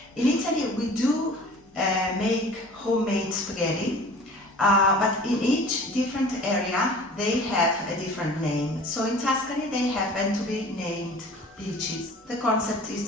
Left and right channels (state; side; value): normal; both; correlation 0.44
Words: In Italy we do make homemade spaghetti, but in each different area they have a different name. So in Tuscany they happen to be named pici. The concept is